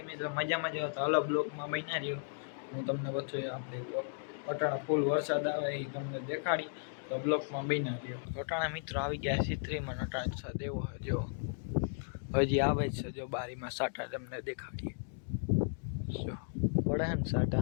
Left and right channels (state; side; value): silent; right; digital silence